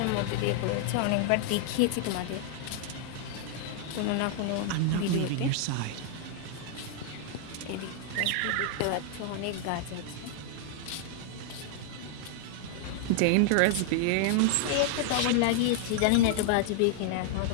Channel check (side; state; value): both; different; correlation 0.00